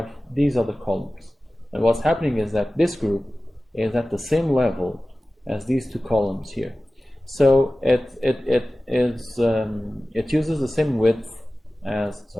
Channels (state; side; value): normal; both; correlation 0.96